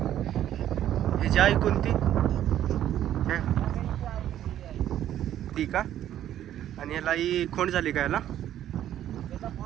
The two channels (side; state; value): left; quieter; 11.6 dB